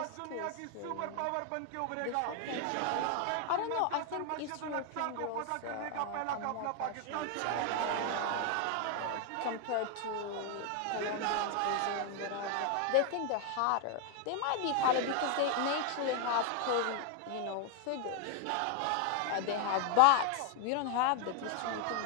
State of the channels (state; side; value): different; both; correlation 0.00